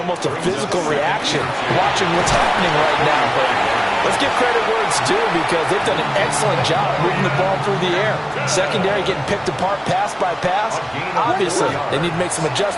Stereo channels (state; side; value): identical; both; correlation 1.00